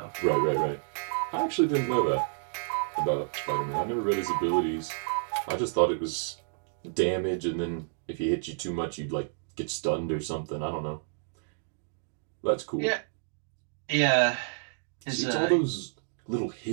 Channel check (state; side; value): silent; left; digital silence